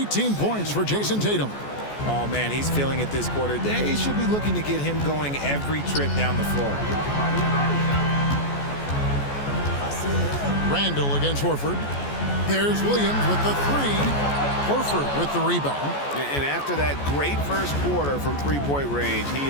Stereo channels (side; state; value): right; late; 14 ms